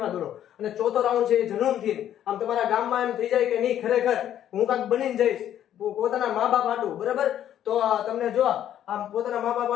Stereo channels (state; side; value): quieter; right; 10.9 dB